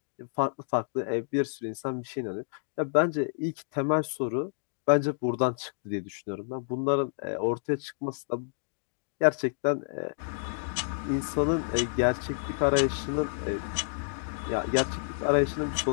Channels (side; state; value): right; silent; digital silence